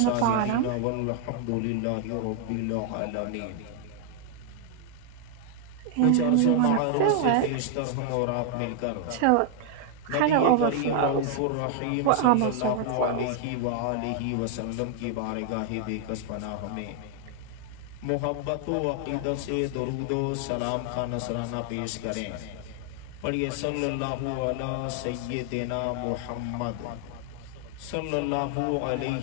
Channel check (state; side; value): different; both; correlation 0.00